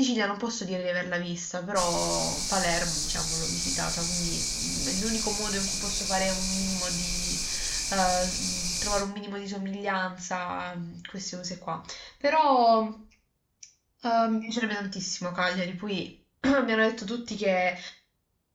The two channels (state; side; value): identical; both; correlation 1.00